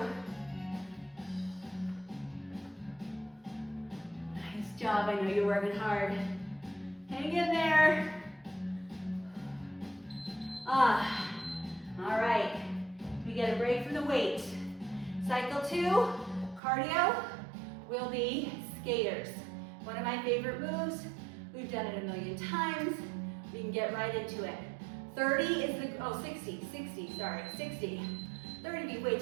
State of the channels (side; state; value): left; drops out; at 16.6 s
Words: Nice job, I know you're working hard. Hang in there. All right, we get a break from the weight. Cycle 2, cardio, will be skaters. One of my favorite moves. We've done it a million times. We can get right into it. 30 is the, 60, sorry, 60. 30 would be way